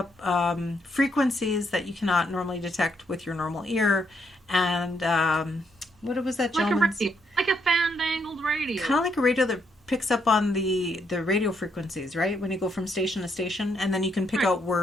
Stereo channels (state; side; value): normal; both; correlation 0.75